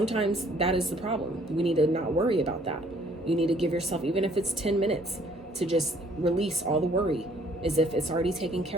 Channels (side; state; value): both; normal; correlation 0.61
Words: that is the problem. We need to not worry about that. You need to give yourself, even if it's 10 minutes, to just release all the worry as if it's already taken